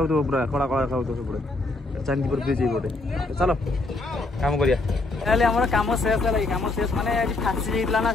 पूरा कड़ा कड़ा देखा सब चांदीपुर ब्रिज ये चलो काम करिया काम शेष है काम शेष माने आज फासी ना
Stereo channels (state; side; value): quieter; right; 3.1 dB